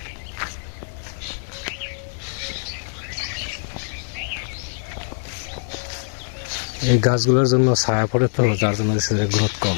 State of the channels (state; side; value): silent; right; 63 dB below the other